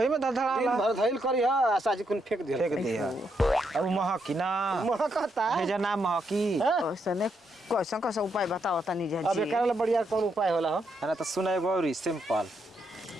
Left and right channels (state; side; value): normal; both; correlation 0.79